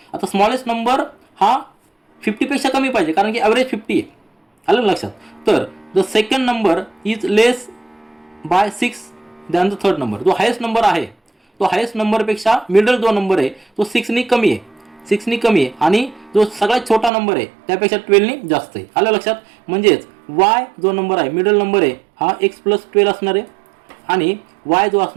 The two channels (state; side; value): drops out; left; at 17.1 s